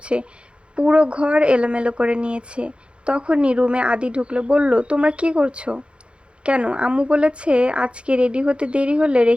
পুরো ঘর এলোমেলো করে নিয়েছে। তখনই রুমে আদি ঢুকলো, বলল, তোমরা কি করছো? কেন, আম্মু বলেছে আজকে রেডি হতে দেরি হলে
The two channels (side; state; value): left; late; 0.057 ms